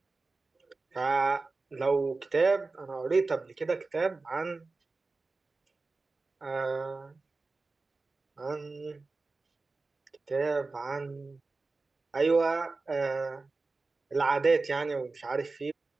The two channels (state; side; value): quieter; left; 3.7 dB